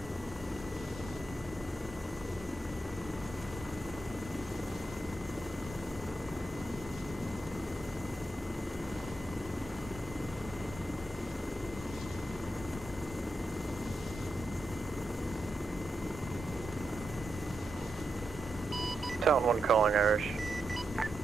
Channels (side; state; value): both; normal; correlation 0.86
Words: Talon 1 calling Irish. Go